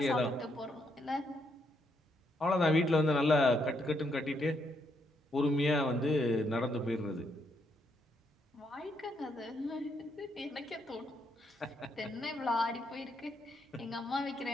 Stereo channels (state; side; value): normal; both; correlation 0.76